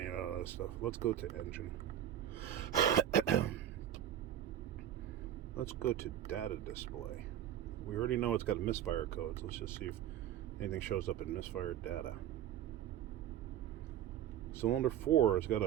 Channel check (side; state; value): left; quieter; 11.1 dB